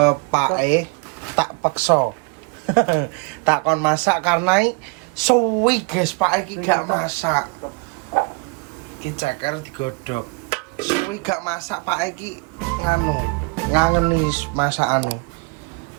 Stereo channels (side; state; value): left; quieter; 31.1 dB